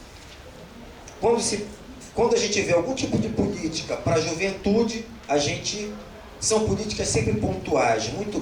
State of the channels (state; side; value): identical; both; correlation 1.00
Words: Quando a gente vê algum tipo de política para a juventude, são políticas sempre pontuais, muito